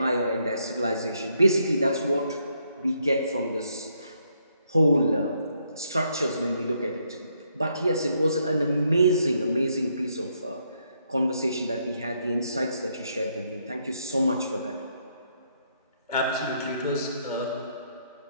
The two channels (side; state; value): both; inverted; correlation -0.74